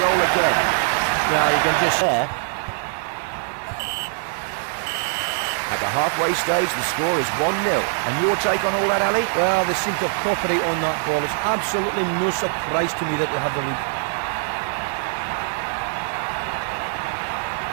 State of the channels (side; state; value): left; silent; 64 dB below the other